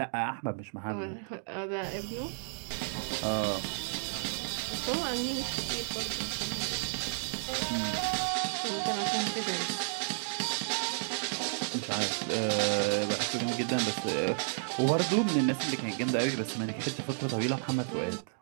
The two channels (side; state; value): left; silent; digital silence